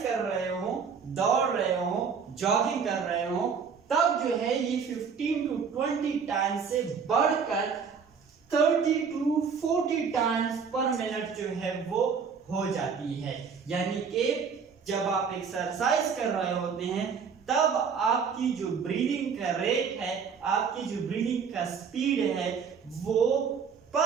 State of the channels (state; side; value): quieter; left; 6.2 dB